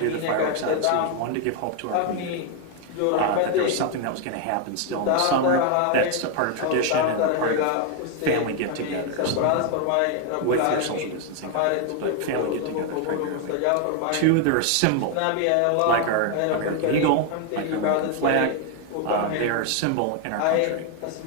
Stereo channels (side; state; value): both; different; correlation 0.01